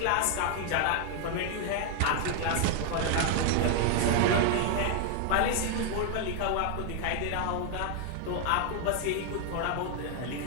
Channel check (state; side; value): different; both; correlation 0.00